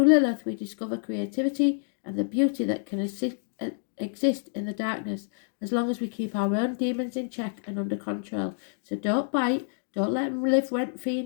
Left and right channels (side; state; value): right; silent; digital silence